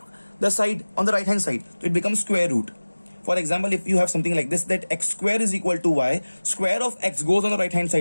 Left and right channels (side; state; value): both; inverted; correlation -1.00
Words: side on the right hand side. So it becomes square root. For example, if you have something like this, that x square is equal to y, square of x goes on the right hand